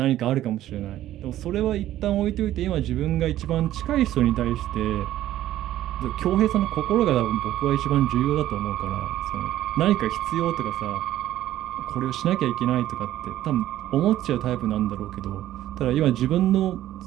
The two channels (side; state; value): left; quieter; 13.4 dB